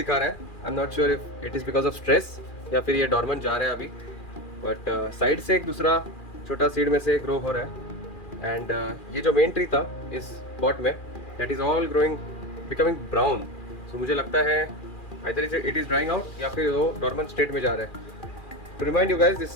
रहा है। आई am not sure if it is because of stress या फिर ये डॉर्मेंट जा रहा है अभी, बट साइड से एक दूसरा छोटा सीड में से ग्रो हो रहा है। एंड ये जो मेन ट्री था इस पॉट में, that is all growing becoming brown. So मुझे लगता है either it is drying out या फिर वो डॉर्मेंट स्टेट में जा रहा है। To remind you guys,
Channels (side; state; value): right; late; 2.4 ms